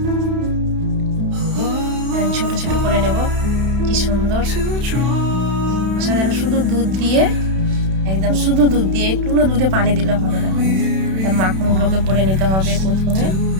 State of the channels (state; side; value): late; left; 31 ms